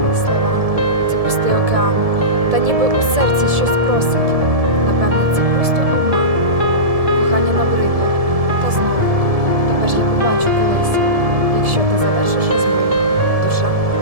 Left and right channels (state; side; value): late; left; 1.7 ms